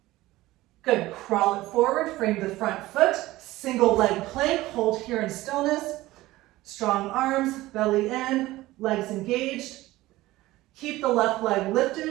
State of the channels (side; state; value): left; quieter; 17.7 dB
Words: Good, crawl it forward, frame the front foot, single leg plank, hold here in stillness. Strong arms, belly in, legs engaged. Keep the left leg